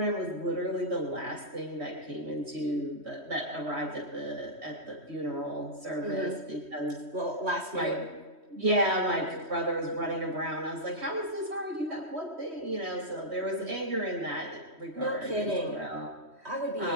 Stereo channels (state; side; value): late; left; 3.1 ms